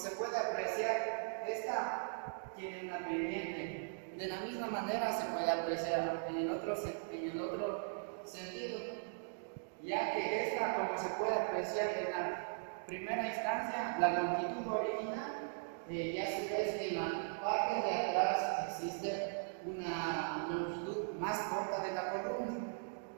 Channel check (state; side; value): silent; left; digital silence